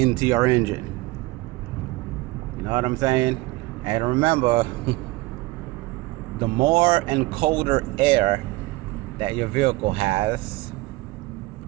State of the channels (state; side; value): quieter; left; 20.8 dB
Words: your engine. You know what I'm saying? And remember, the more and colder air that your vehicle has,